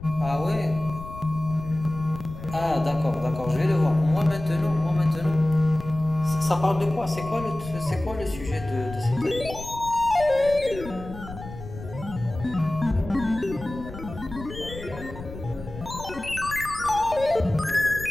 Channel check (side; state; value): left; noise; rumble, 12 dB below the sound